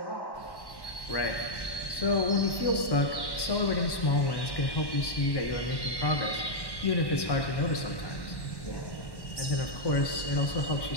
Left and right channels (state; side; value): late; right; 1.1 ms